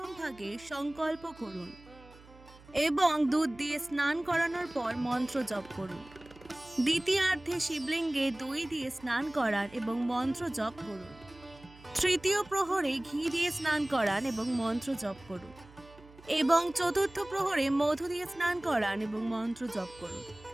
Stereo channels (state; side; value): noise; right; hum, 22 dB below the sound